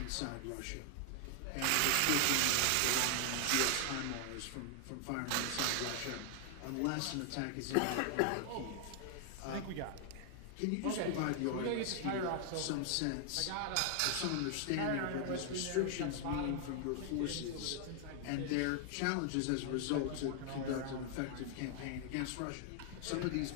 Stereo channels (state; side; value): different; both; correlation 0.00